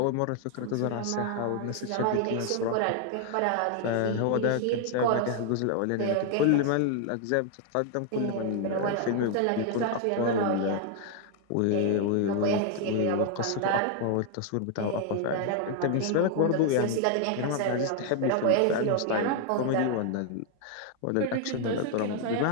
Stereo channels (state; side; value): different; both; correlation 0.00